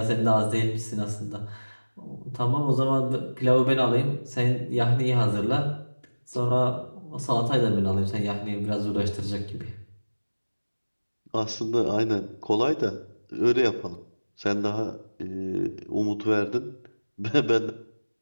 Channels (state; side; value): inverted; both; correlation -1.00